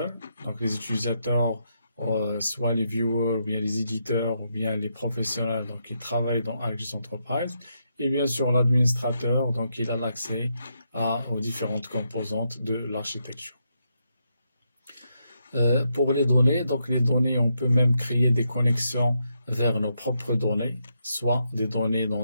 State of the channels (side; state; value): both; inverted; correlation -0.81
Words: Donc les utilisateurs, soit les viewers, ou bien les éditeurs, ou bien les professionnels, donc ils travaillent dans ArcGIS Enterprise. Et bien sûr l'administrateur, donc il a l'accès aux différentes composantes de l'architecture. Pour les données, donc les données, on peut même créer des connexions vers nos propres données, soit des données